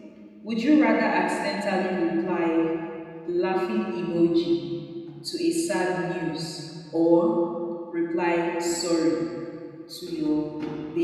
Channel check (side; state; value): both; identical; correlation 1.00